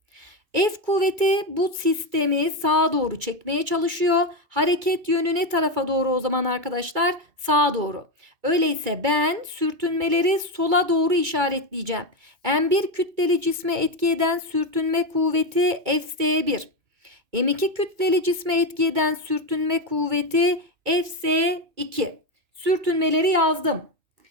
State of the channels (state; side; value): late; left; 2.2 ms